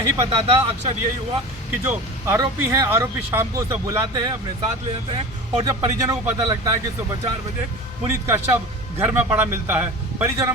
पता था। अक्सर यही हुआ कि जो आरोपी हैं, आरोपी शाम को उसे बुलाते हैं, अपने साथ ले जाते हैं, और जब परिजनों को पता लगता है कि सुबह 4 बजे पुनीत का शव घर में पड़ा मिलता है, परिजनों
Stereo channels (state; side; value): normal; both; correlation 0.33